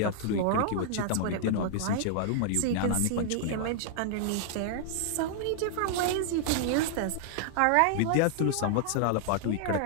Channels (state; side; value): different; both; correlation -0.01